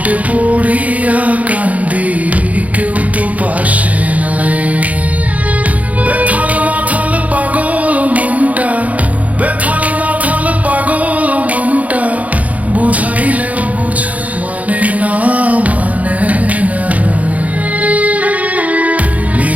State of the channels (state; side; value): late; left; 0.070 ms